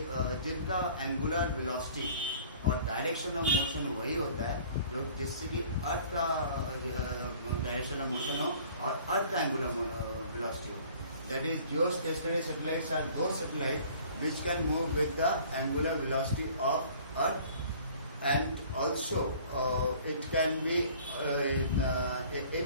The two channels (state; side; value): inverted; both; correlation -0.51